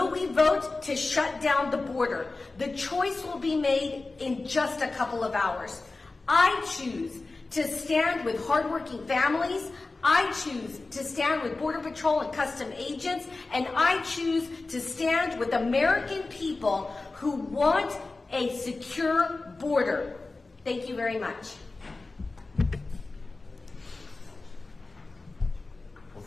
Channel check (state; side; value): quieter; right; 3.5 dB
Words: we vote to shut down the border? The choice will be made in just a couple of hours. I choose to stand with hardworking families. I choose to stand with Border Patrol and custom agents, and I choose to stand with American people who want a secure border. Thank you very much. Well,